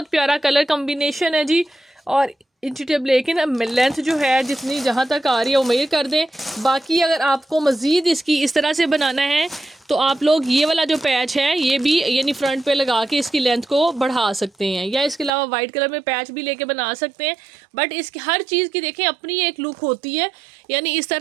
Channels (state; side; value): drops out; left; at 15.3 s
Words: प्यारा कलर कम्बिनेशन है जी। और इंची टेप लेकिन लेंथ जो है जितनी जहाँ तक आ रही है वो मेजर कर दें। बाकी अगर आपको मज़ीद इसकी इस तरह से बनाना है तो आप लोग ये वाला जो पैच है ये भी यानी फ्रंट पे लगा के इसकी लेंथ को बढ़ा सकते हैं, या इसके अलावा वाइट कलर में पैच भी लेके बना सकते हैं। बट इसकी हर चीज़ की देखें अपनी एक लुक होती है, यानी इस